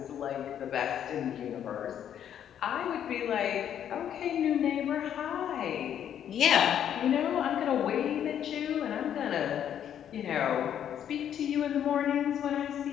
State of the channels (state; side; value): quieter; right; 9.7 dB